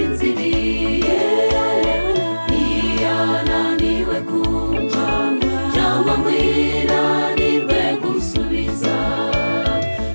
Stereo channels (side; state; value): both; inverted; correlation -1.00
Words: ntiyananiwe kumva cyangwa ngo inanirwe gusubiza.